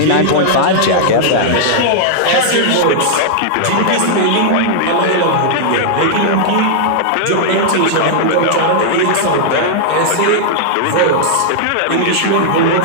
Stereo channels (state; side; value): different; both; correlation -0.02